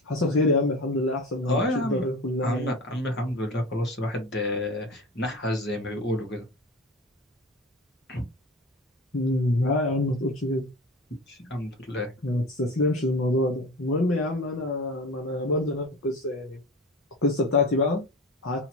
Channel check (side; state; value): both; normal; correlation 0.32